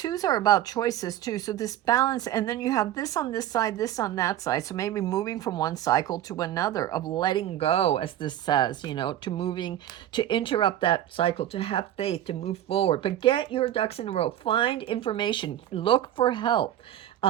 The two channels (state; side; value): quieter; left; 12.2 dB